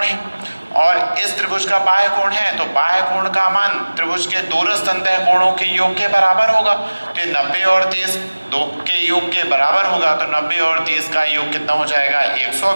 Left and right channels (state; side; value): inverted; both; correlation -1.00